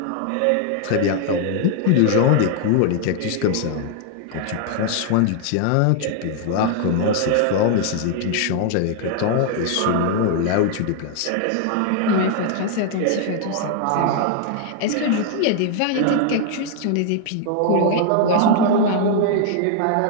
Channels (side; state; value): both; different; correlation 0.00